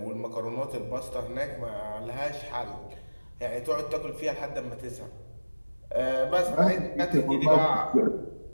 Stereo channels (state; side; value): inverted; both; correlation -1.00